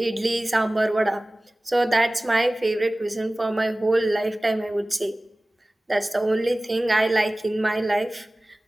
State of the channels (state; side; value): normal; both; correlation 0.98